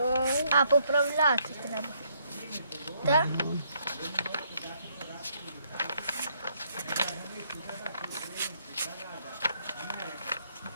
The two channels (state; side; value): inverted; both; correlation -0.70